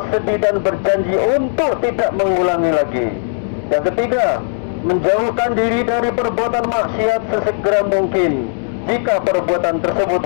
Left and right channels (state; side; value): silent; right; digital silence